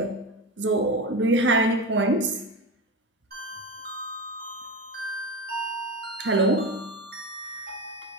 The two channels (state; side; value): normal; both; correlation 0.21